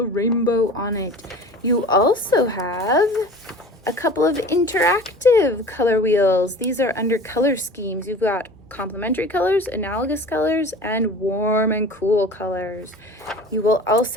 rainbow on it. You also have a couple of interactive color wheels. These are under color schemes. You've got complementary colors, analogous colors, and warm and cool colors. You will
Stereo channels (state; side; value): normal; both; correlation 0.40